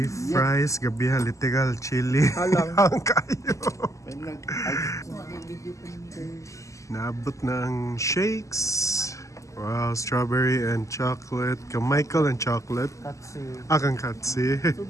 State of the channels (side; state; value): right; late; 0.16 ms